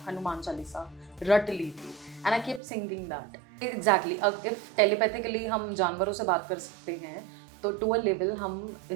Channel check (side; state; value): left; drops out; at 2.6 s